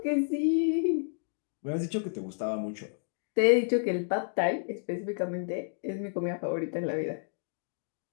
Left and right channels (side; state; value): right; silent; digital silence